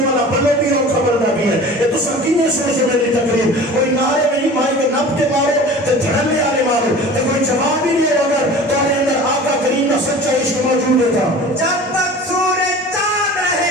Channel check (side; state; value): both; normal; correlation 0.40